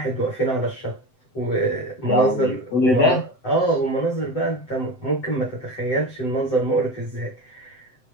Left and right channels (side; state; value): right; late; 7.8 ms